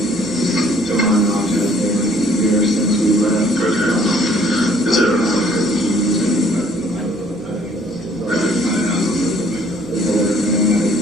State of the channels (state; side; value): noise; right; hum, 29 dB below the sound